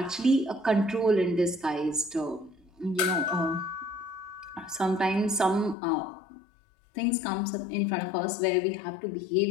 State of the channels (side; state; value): right; drops out; at 5.8 s